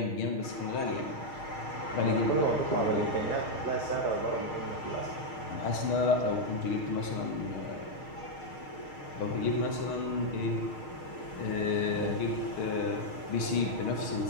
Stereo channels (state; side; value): late; right; 6.5 ms